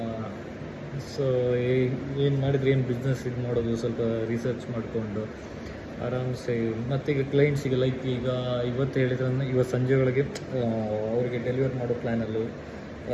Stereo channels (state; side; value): identical; both; correlation 1.00